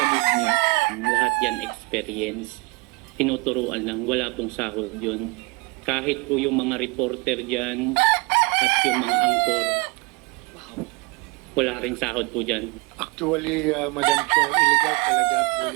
mood niya. Lahat yan experience, tinuturuan lang, wala pong sahod yun. Kahit po yung mga reporter dyan at yung mga angkor, wala rin sahod po dyan. Actually, Madam Chair, illegal talaga po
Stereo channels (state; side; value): quieter; left; 26.1 dB